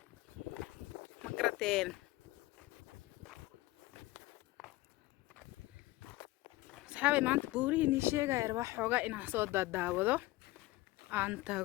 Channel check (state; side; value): quieter; right; 18.8 dB